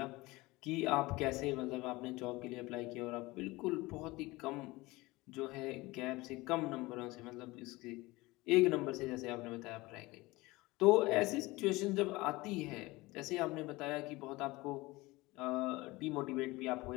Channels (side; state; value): right; quieter; 21.2 dB